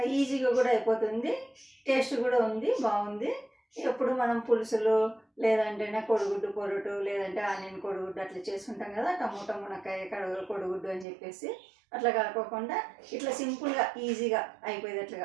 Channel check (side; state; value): left; drops out; at 11.1 s